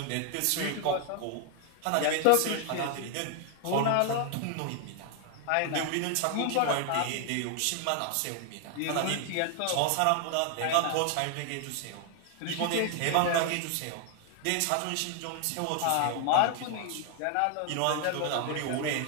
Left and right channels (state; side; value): different; both; correlation 0.00